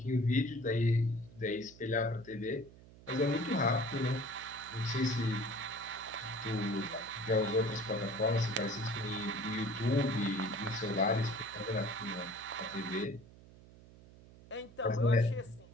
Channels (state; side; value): noise; right; hum, 21 dB below the sound